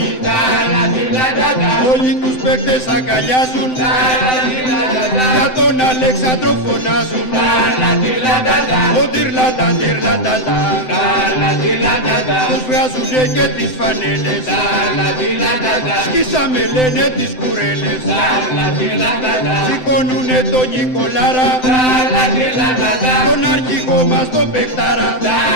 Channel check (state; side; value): late; right; 7.8 ms